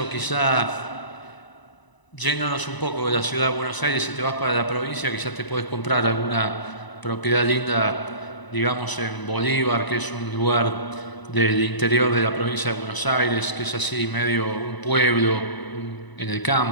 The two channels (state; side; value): late; right; 1.0 ms